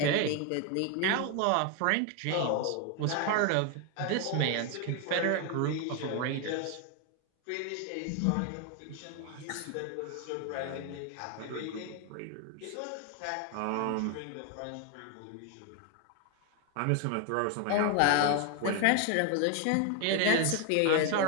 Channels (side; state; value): both; different; correlation 0.01